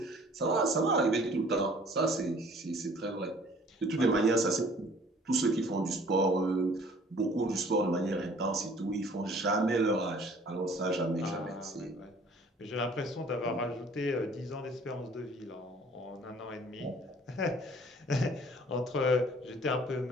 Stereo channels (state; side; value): normal; both; correlation 0.53